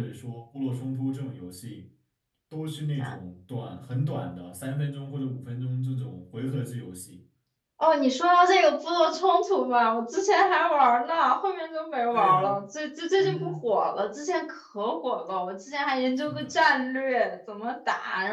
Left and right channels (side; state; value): both; identical; correlation 1.00